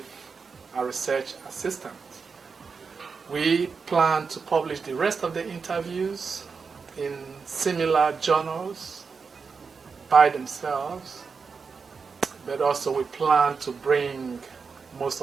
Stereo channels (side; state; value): left; quieter; 5.2 dB